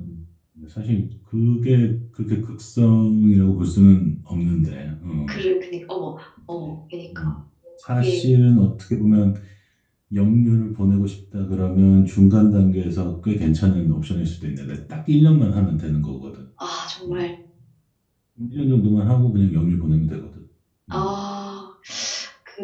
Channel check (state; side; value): identical; both; correlation 1.00